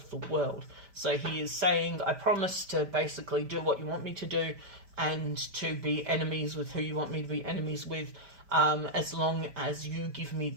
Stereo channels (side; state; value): left; late; 5.1 ms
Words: the world. So he is saying, I promise to basically do what you want me to do, and to be enemies with who you want me to be enemies with, as long as you give me